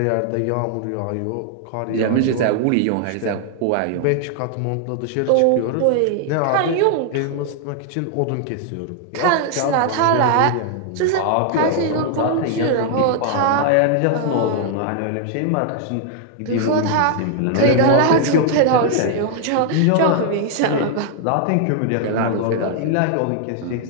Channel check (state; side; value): different; both; correlation 0.00